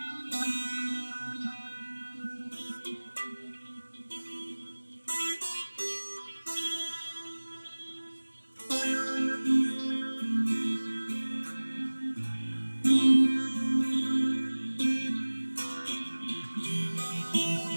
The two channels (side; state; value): both; inverted; correlation -1.00